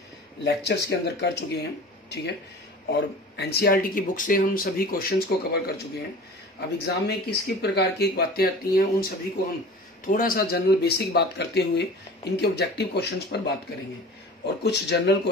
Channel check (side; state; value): both; normal; correlation 0.40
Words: लेक्चर्स के अंदर कर चुके हैं, ठीक है। और एनसीईआरटी की बुक से हम सभी क्वेश्चंस को कवर कर चुके हैं। अब एग्जाम में किस किस प्रकार की बातें आती हैं उन सभी को हम थोड़ा सा जनरल बेसिक बात करते हुए इनके ऑब्जेक्टिव क्वेश्चंस पर बात करेंगे, और कुछ जनरल